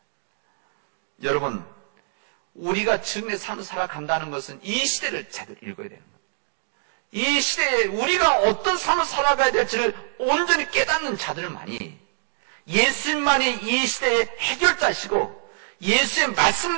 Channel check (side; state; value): left; silent; digital silence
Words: 여러분, 우리가 증인의 삶을 살아간다는 것은 이 시대를 제대로 읽어야 되는 겁니다. 이 시대에 우리가 어떤 삶을 살아가야 될지를 온전히 깨닫는 자들만이 예수님만이 이 시대의 해결자시고 예수의